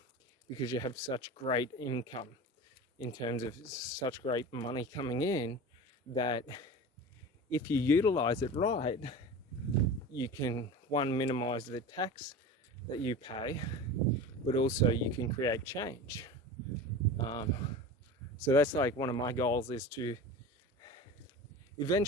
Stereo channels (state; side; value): normal; both; correlation 0.32